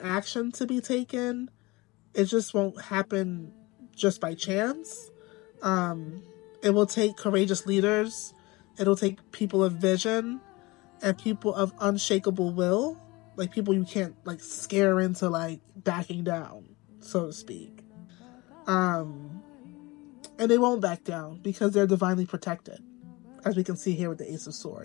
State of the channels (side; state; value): right; quieter; 22.9 dB